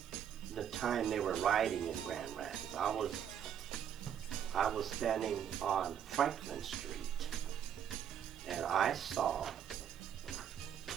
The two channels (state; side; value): quieter; left; 9.0 dB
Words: the time they were rioting in Grand Rapids. I was standing on Franklin Street, and I saw